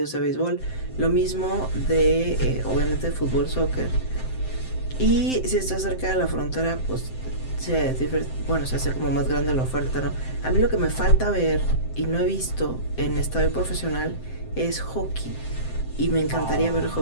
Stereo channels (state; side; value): late; right; 7.7 ms